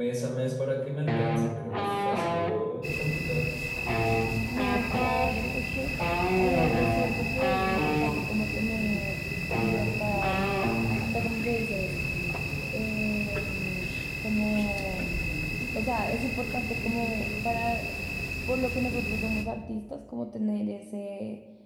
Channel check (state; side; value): identical; both; correlation 1.00